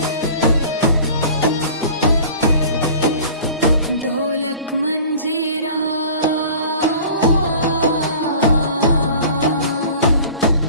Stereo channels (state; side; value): inverted; both; correlation -0.43